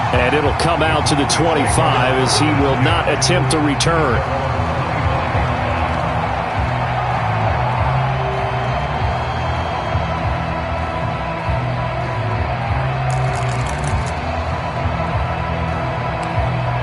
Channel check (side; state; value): both; identical; correlation 1.00